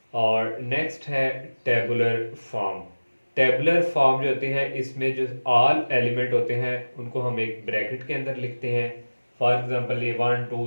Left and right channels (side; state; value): both; inverted; correlation -1.00